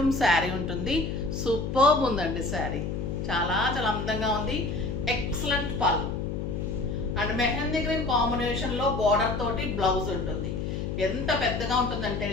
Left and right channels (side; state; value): left; noise; hum, 3 dB below the sound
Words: శారీ ఉంటుంది. సూపర్బ్ ఉందండి శారీ, చాలా చాలా అందంగా ఉంది. Excellent pallu and mehndi green combination లో బార్డర్ తోటి బ్లౌజ్ ఉంటుంది. ఎంత పెద్దగా ఉంటుందంటే